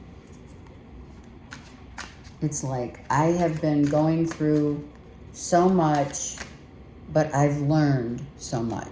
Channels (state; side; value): identical; both; correlation 1.00